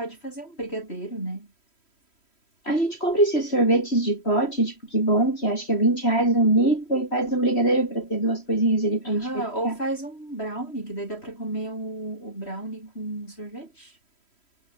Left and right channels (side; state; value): right; late; 3.1 ms